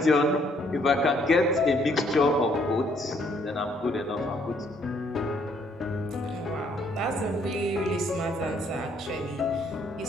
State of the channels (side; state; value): both; normal; correlation 0.67